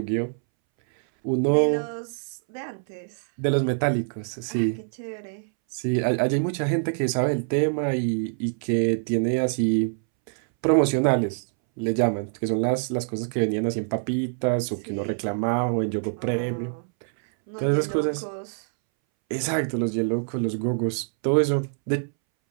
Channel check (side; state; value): left; silent; 62 dB below the other